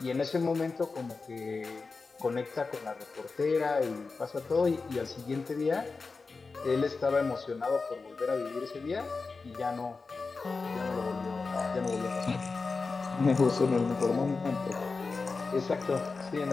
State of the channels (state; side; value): quieter; right; 4.2 dB